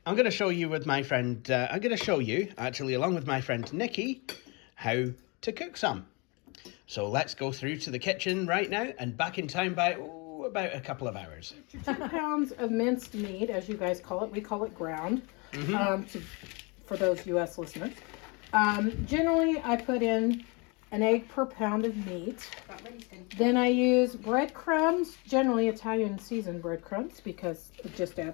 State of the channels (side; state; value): right; quieter; 29.7 dB